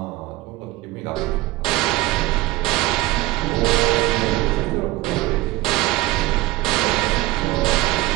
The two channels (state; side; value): quieter; left; 18.2 dB